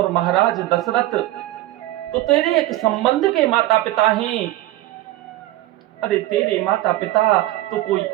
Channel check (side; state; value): left; quieter; 15.9 dB